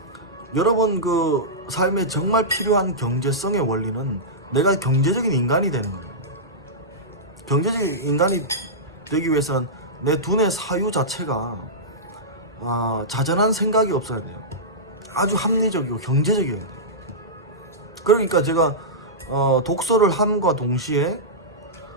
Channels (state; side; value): normal; both; correlation -0.14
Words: 여러분 그 삶에 정말 필요한 경제성의 원리는 내가 경제적인 인간이 되는 거예요. 경제적인 인간이 되기 위해서는 내 두뇌 사유 자체가 자잘한 생각이 없어야 돼요. 아주 합리적이고 경제적이어야 돼요. 그러니까 제가 독서를 함과 동시에